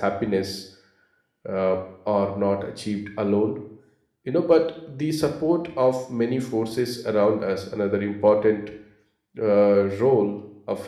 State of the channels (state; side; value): identical; both; correlation 1.00